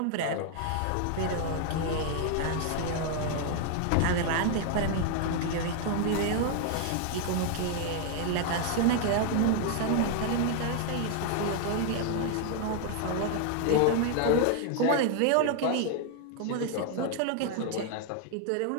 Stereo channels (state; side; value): different; both; correlation 0.00